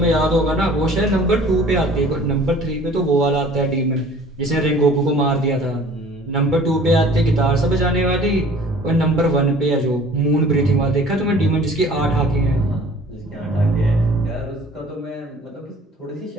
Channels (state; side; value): normal; both; correlation 0.49